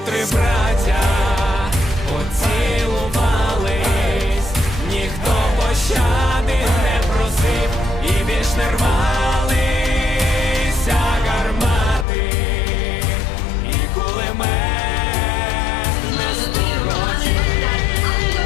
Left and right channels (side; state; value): right; drops out; at 12.1 s